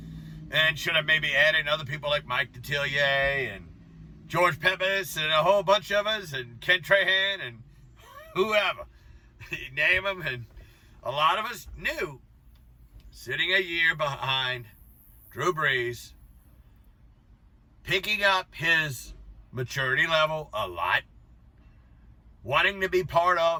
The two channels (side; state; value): both; identical; correlation 1.00